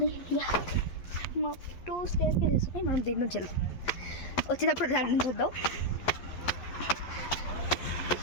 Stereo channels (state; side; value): late; right; 11 ms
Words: మా 2 స్టేర్స్ చేసుకుని మనం దీని నుంచి వెళ్దాం. వచ్చేటప్పుడు దాని నుంచి వద్దాం.